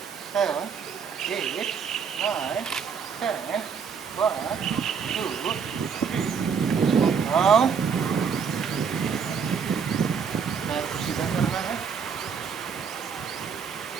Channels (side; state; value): left; quieter; 6.5 dB